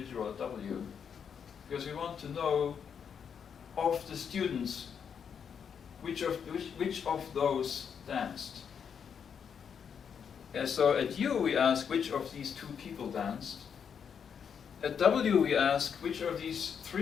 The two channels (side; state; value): right; quieter; 7.3 dB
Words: at W, because we want to know of the students which of those danced. And so at U we ask which of these 2 people danced. At W we ask which of these